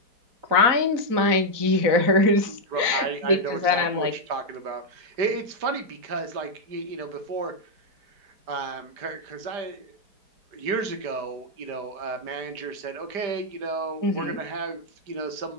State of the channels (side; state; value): left; late; 4.0 ms